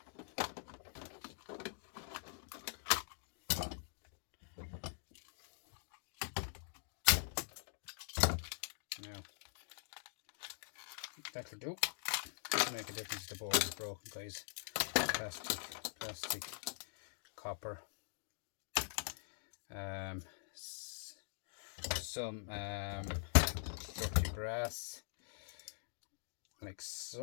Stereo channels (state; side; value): silent; right; digital silence